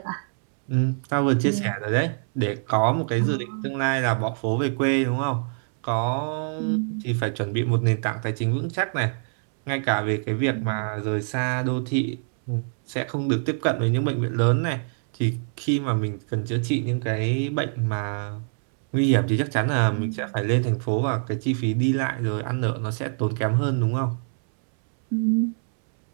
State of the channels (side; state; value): left; silent; 62 dB below the other